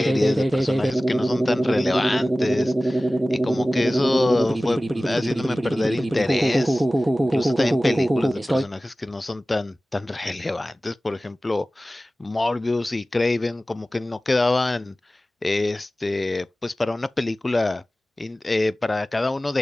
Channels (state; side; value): normal; both; correlation 0.97